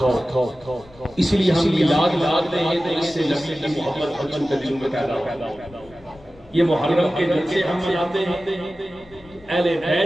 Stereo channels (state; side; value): noise; left; rumble, 25 dB below the sound